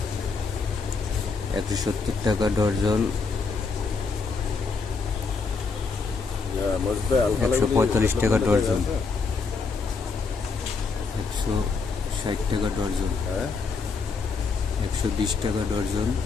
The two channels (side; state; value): right; quieter; 4.6 dB